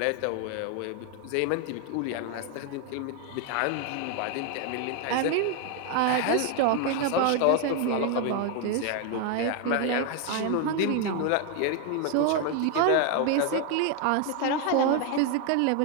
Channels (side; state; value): both; different; correlation 0.01